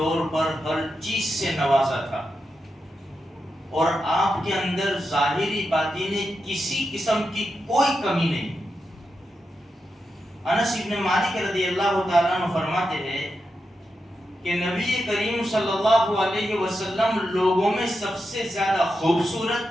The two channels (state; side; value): normal; both; correlation 0.87